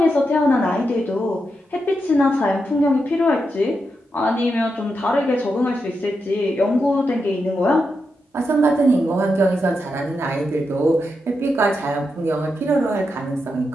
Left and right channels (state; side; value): normal; both; correlation 0.86